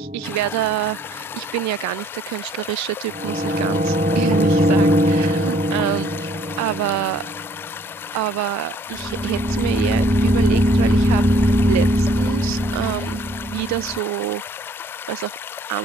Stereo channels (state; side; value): normal; both; correlation 0.60